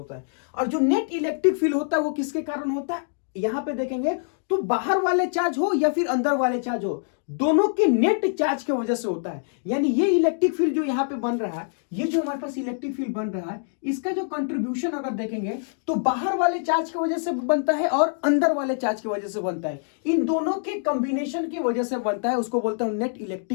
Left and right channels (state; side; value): silent; right; digital silence